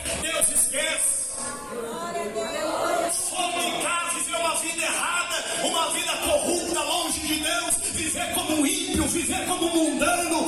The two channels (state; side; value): noise; left; rumble, 24 dB below the sound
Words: Deus esquece. Fornicar, viver uma vida errada, uma vida corrupta, longe de Deus, viver como um ímpio, viver como um